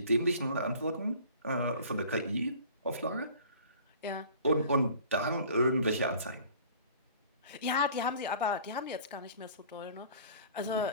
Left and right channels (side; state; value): both; inverted; correlation -0.48